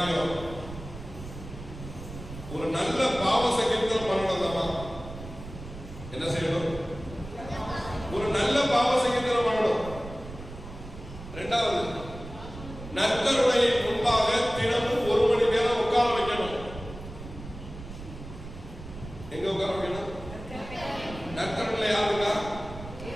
ஒரு நல்ல பாவ சங்கீர்த்தனம் பண்ணணும். அம்மா என்ன செய்யணும்? ஒரு நல்ல பாவ சங்கீர்த்தனம் பண்ணணும். இரண்டாவது, நற்கருணை முன்பாக தினமும் 1 மணி நேரம் உட்கார வைக்கணும். எங்க உட்கார வைக்கணும்? நற்கருணை யாருக்கா?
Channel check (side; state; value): right; noise; rumble, 13 dB below the sound